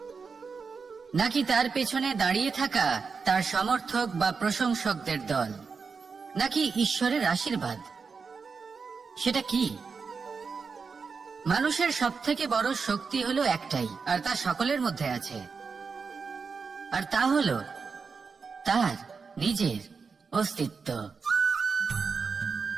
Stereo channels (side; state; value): left; quieter; 5.1 dB